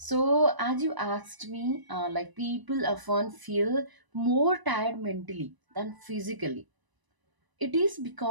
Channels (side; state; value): left; late; 1.0 ms